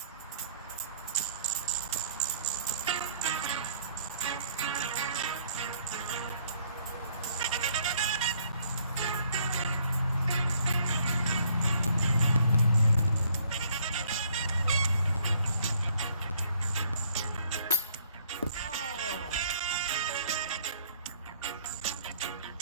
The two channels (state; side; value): inverted; both; correlation -0.63